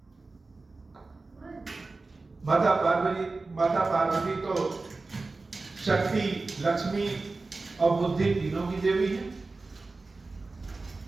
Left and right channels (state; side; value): quieter; left; 3.6 dB